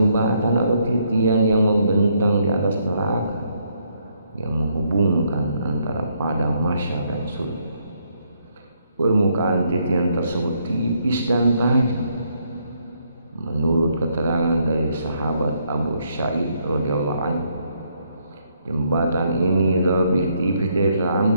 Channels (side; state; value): both; inverted; correlation -0.73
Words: atau titian yang membentang di atas neraka, yang menghubungkan antara padang mahsyar dan surga. Permukaan titian tersebut tipis dan tajam. Menurut keterangan dari sahabat Abu Sa'id radhiyallahu anhu, jembatan ini lebih tipis dari